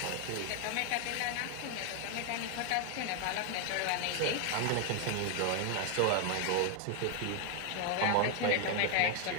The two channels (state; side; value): different; both; correlation 0.00